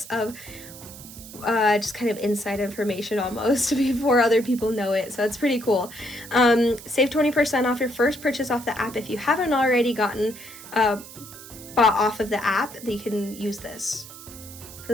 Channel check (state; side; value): noise; right; hiss, 16 dB below the sound